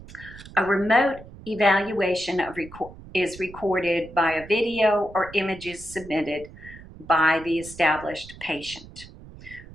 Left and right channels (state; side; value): noise; right; rumble, 17 dB below the sound